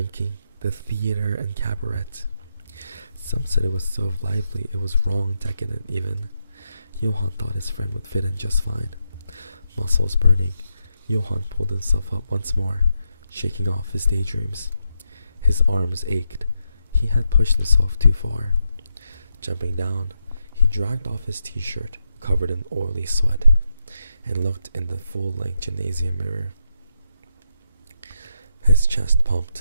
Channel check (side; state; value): both; inverted; correlation -0.83